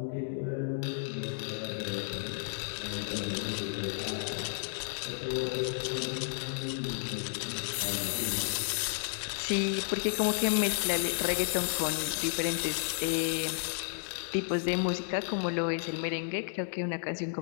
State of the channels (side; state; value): right; silent; digital silence